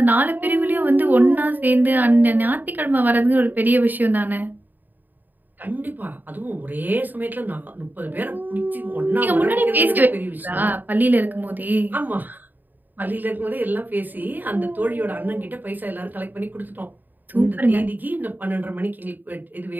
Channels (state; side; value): late; left; 0.088 ms